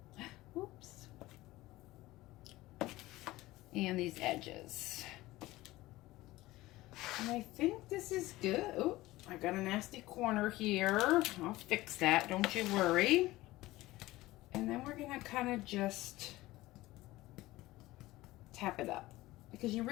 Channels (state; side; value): quieter; right; 18.1 dB